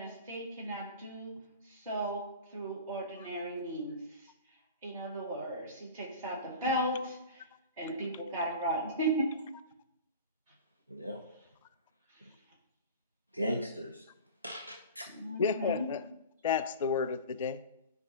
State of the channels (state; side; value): inverted; both; correlation -0.35